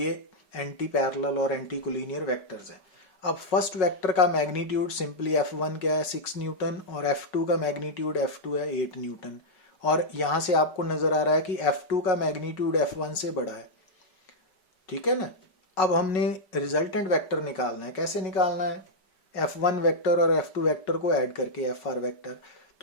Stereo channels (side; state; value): right; late; 5.4 ms